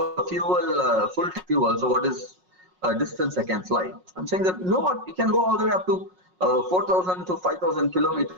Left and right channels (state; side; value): late; left; 5.5 ms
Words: fuel, full fuel, so what is distance I can fly? I'm saying that, you know what, you can go all the way up to 4,000 to 5,000